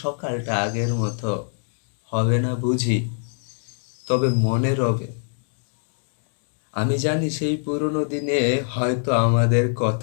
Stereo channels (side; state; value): right; silent; digital silence